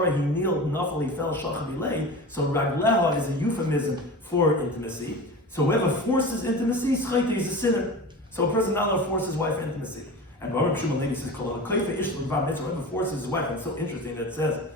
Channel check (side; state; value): both; normal; correlation 0.32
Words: he kneeled, nafal he fell, shachavilei. So ragleha is a euphemism for intimacy. So whoever forces intimacy, schayte is a sinner. So a person not allowed to force his wife intimacy. And Baruch Shimon Levi says, whoever forces his wife, it's so interesting that it says